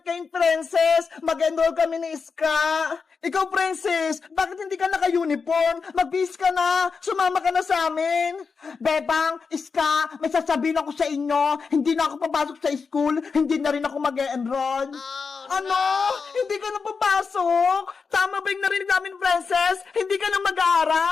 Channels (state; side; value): quieter; right; 5.2 dB